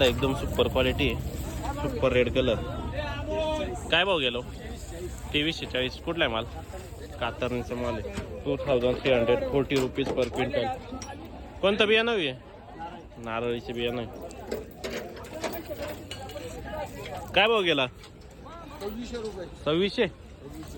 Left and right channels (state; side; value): identical; both; correlation 1.00